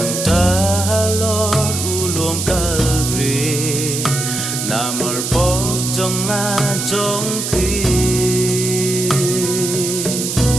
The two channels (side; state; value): right; noise; hiss, 3 dB below the sound